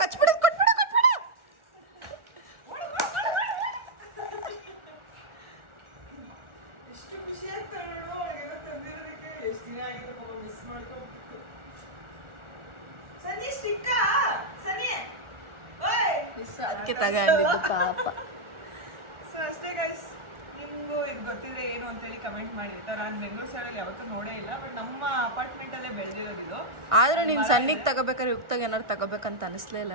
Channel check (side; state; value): left; late; 1.4 ms